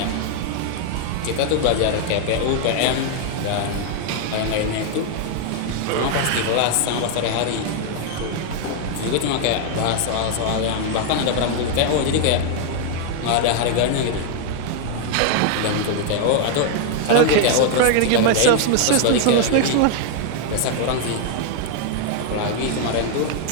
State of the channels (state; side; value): different; both; correlation 0.00